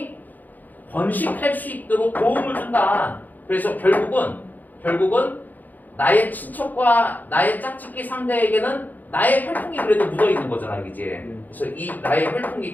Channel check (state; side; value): late; right; 0.084 ms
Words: 번식할 수 있도록 도움을 준다. 그래서 결국은 나의 친척과 나의 짝짓기 상대에게는 나의 혈통이 그래도 묻어 있는 거잖아, 그지? 그래서 이 나의